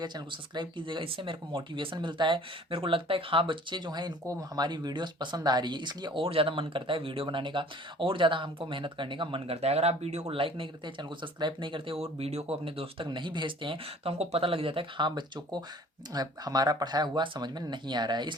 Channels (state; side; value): normal; both; correlation 0.51